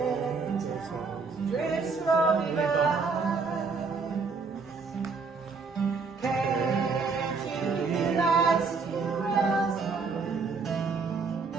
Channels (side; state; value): left; quieter; 4.7 dB